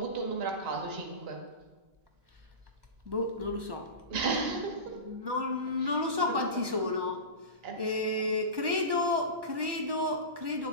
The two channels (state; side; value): late; left; 1.1 ms